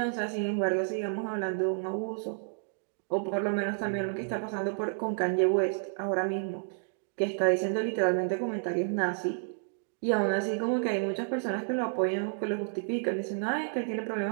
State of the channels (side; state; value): left; silent; digital silence